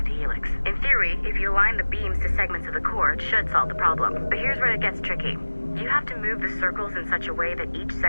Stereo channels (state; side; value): inverted; both; correlation -1.00